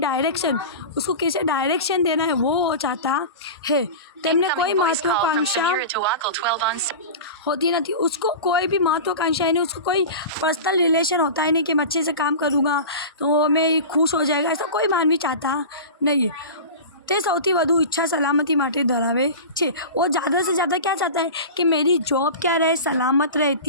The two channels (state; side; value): inverted; both; correlation -0.31